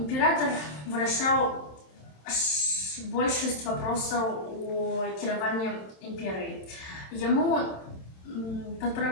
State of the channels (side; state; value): right; late; 27 ms